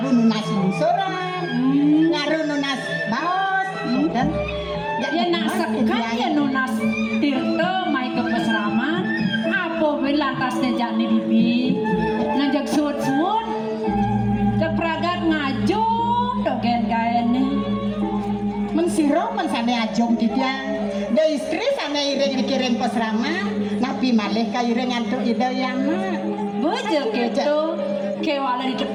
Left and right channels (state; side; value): identical; both; correlation 1.00